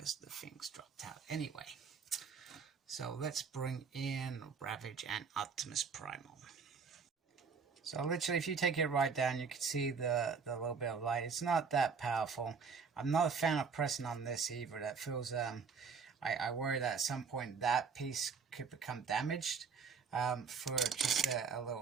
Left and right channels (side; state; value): left; quieter; 5.7 dB